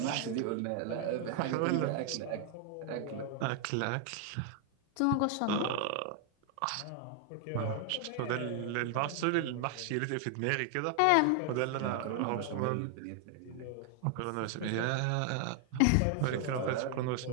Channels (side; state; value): both; different; correlation 0.00